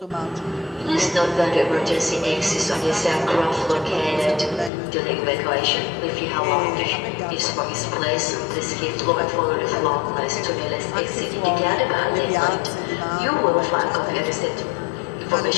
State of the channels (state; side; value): drops out; right; at 4.7 s